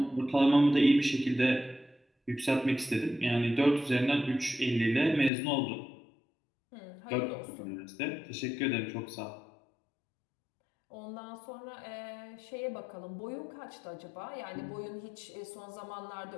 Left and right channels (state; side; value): drops out; right; at 5.3 s